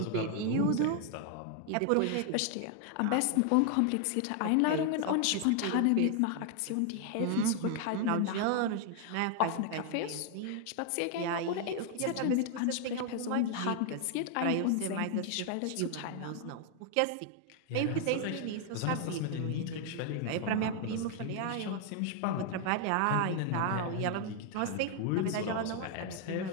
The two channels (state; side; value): different; both; correlation 0.00